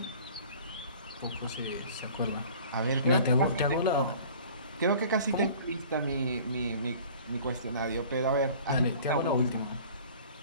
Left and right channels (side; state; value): both; inverted; correlation -0.47